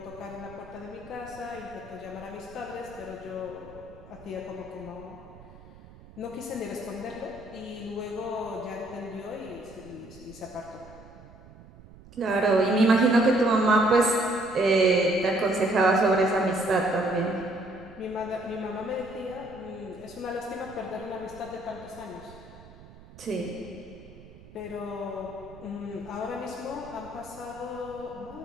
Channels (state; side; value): noise; right; rumble, 20 dB below the sound